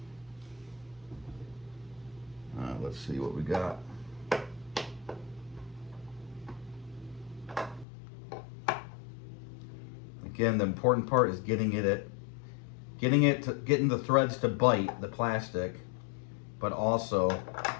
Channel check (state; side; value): drops out; right; at 7.9 s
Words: Let's see what we got. Again, the important part is getting the threads to bite the plastic, but also